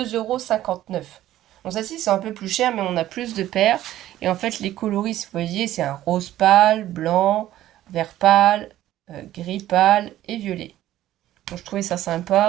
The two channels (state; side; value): quieter; left; 13.7 dB